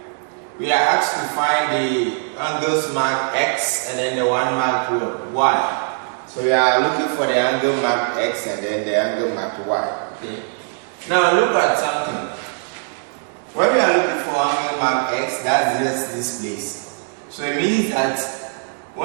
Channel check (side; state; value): left; silent; 65 dB below the other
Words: we are asked to find the angles marked X and then the one marked Y. So we are looking for the angle marked X and then the angle marked Y. Okay. Now look at something. When we are looking for angle marked X, that's just this place. So it means that